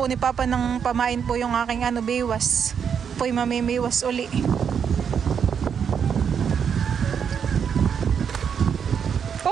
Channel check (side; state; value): left; quieter; 7.3 dB